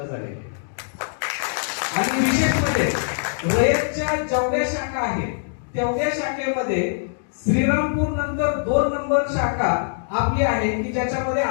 झालेले आणि विशेष म्हणजे रयतच्या जेवढ्या शाखा आहेत तेवढ्या शाखेमध्ये श्रीरामपूर नंतर 2 नंबर शाखा आपली आहे की ज्याच्यामध्ये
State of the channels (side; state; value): right; silent; digital silence